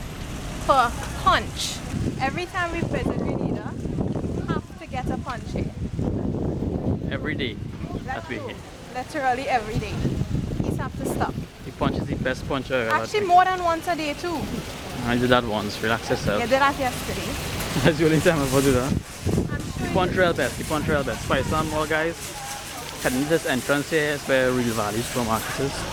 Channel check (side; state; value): both; identical; correlation 1.00